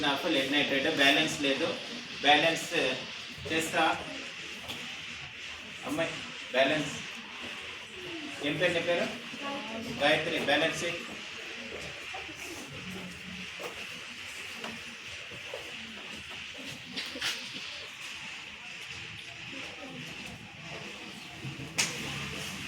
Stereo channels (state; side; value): identical; both; correlation 1.00